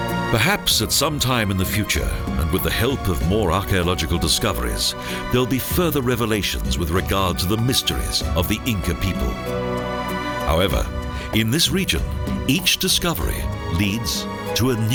Perhaps at some time in the future, and with the help of more archaeological discoveries, there'll be further revelations with regard to the mysteries of the Inca people. However, in this region, each discovery leads to a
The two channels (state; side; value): identical; both; correlation 1.00